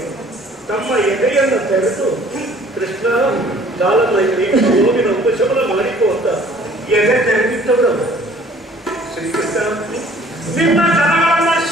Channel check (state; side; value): normal; both; correlation 0.54